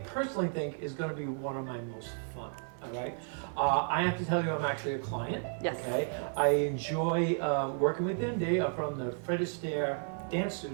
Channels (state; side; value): silent; left; 56 dB below the other